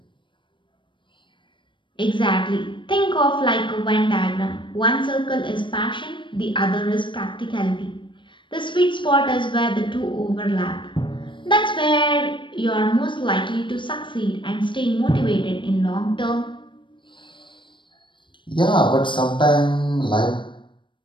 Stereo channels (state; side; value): late; right; 0.24 ms